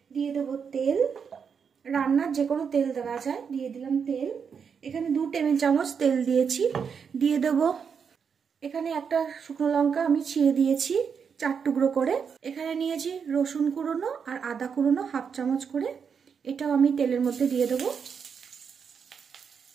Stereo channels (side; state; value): left; quieter; 6.6 dB